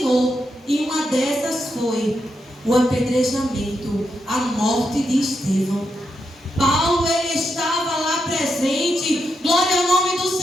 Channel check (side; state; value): both; normal; correlation 0.84